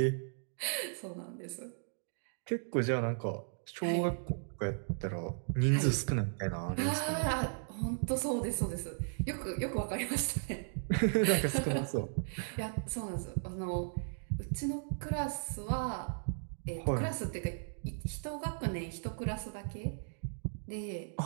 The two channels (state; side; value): silent; left; digital silence